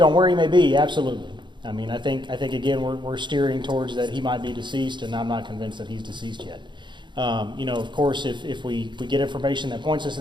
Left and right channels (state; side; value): late; left; 0.23 ms